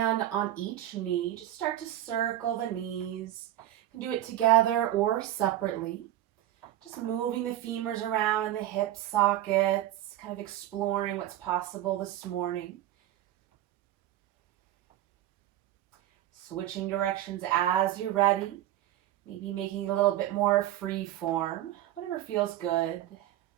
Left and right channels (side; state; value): left; quieter; 13.1 dB